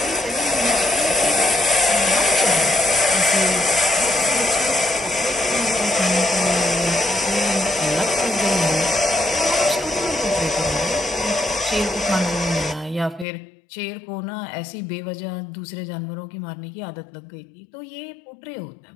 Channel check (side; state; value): right; drops out; at 13.2 s